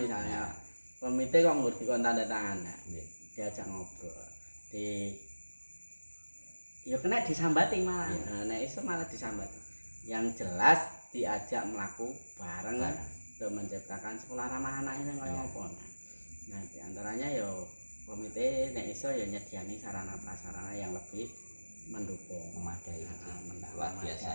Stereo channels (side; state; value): both; inverted; correlation -1.00